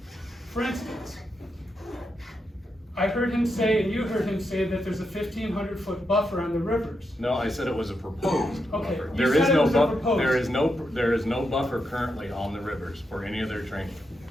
For instance, I heard him say, and you heard him say, that there's a 1,500-foot buffer on the rivers. No, I said it was a proposed Okay, buffer. you said it was a proposed. There is no buffer currently on the rivers for any of their training.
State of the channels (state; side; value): normal; both; correlation 0.84